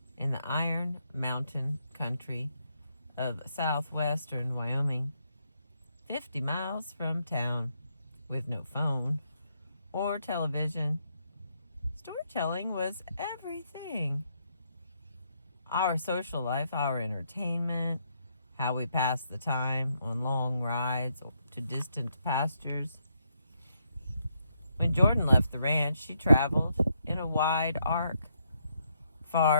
in the Iron Mountain country of southwestern Wyoming, 50 miles from town, with no phone or television. Storytelling was everything. Our social life, our entertainment, how we passed the time on long rides to distant pastures. When Jordan left the ranch, she traveled in a wide arc,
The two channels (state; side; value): inverted; both; correlation -0.77